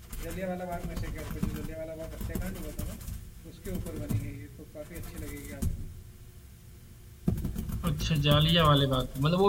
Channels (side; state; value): both; identical; correlation 1.00